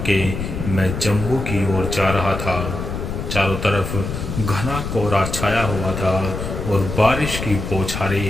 मैं जम्मू की ओर जा रहा था। चारों तरफ घना कोहरा छाया हुआ था और बारिश की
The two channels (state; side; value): noise; left; rumble, 5 dB below the sound